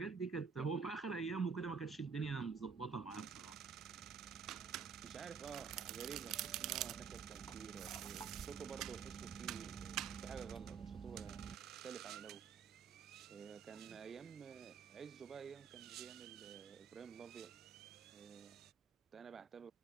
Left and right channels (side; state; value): left; quieter; 6.3 dB